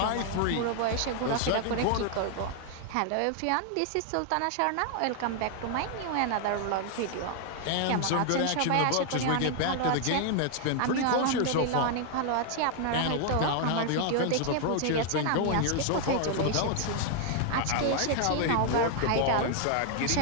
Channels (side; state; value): both; different; correlation 0.00